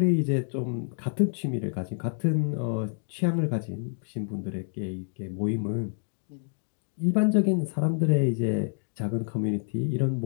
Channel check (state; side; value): silent; right; digital silence